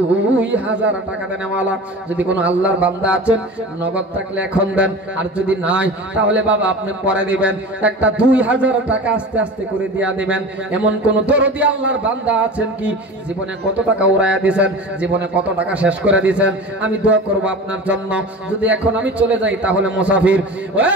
টাকা দেন। ওয়ালা যদি কোনো আল্লাহর বান্দা আছেন নগদ থাকলে এখন দেন, আর যদি নাই তাহলে বাবা আপনি পরে দিবেন। একটা 2000 টাকা আস্তে আস্তে করে দিয়া দিবেন। এমন কোন দরদি আল্লাহর বান্দা আছেন কি জীবনে কত টাকা উড়াইয়া দিয়েছেন, জীবনে কত টাকা শেষ করে দিয়েছেন? আমি দোয়া করব আপনার জন্য। যদি এখন আমি চলে যাই তাহলে মুসাফির।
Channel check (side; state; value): both; normal; correlation 0.34